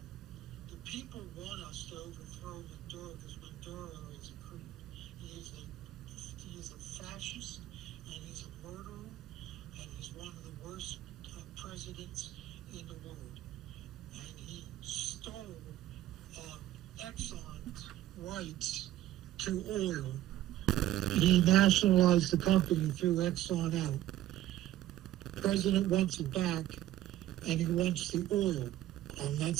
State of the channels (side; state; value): left; quieter; 13.7 dB